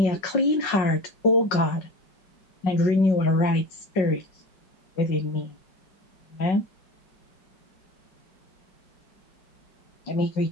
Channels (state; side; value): late; right; 5.4 ms